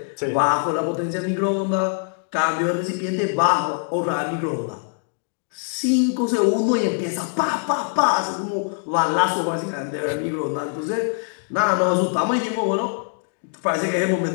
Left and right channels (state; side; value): quieter; right; 39.7 dB